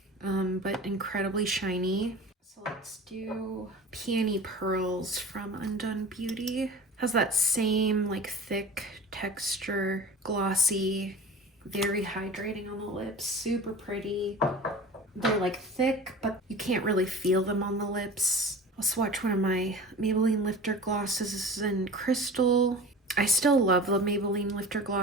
but incredibly shiny. So let's do Peony Pearls from Undone Beauty. Has that same like thick texture, glossy, very hydrating on the lips, super pretty. They're like thick, but you can't really feel them on the lips. I'll swatch one of my Maybelline Lifter glosses. This is in Crystal. I still love the Maybelline Lifter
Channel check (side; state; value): both; normal; correlation 0.37